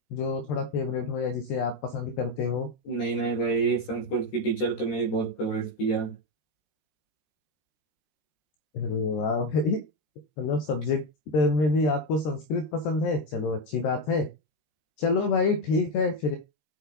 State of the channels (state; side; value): late; right; 13 ms